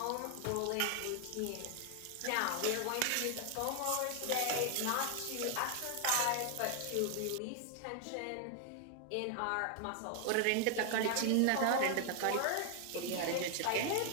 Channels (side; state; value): both; different; correlation 0.00